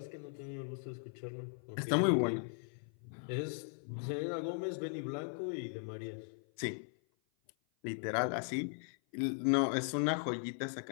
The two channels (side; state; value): right; silent; 52 dB below the other